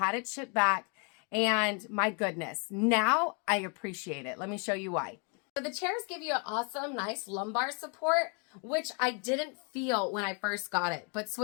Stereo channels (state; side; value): quieter; right; 35.9 dB